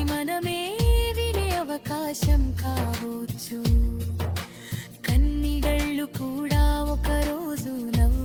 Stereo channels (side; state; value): both; identical; correlation 1.00